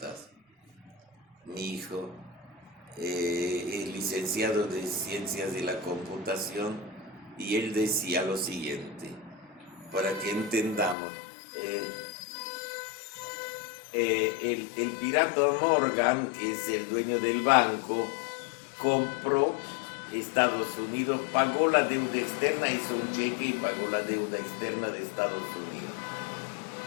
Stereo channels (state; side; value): drops out; right; at 11.0 s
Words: Mi hijo es licenciado de ciencias de la computación, y él decía lo siguiente, para que entendamos. El pirata Morgan, que es el dueño del banco, compró Estados Unidos, pagó la deuda externa, hizo un cheque y pagó la deuda externa de Estados Unidos.